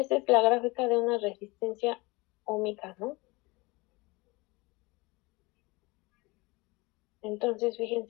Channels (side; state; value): right; quieter; 24.3 dB